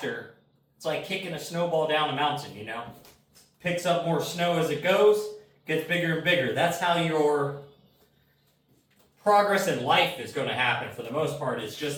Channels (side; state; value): both; identical; correlation 1.00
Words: It's like kicking a snowball down a mountain, Picks up more snow as it goes, gets bigger and bigger. That's how your progress in life is going to happen for the most part. It's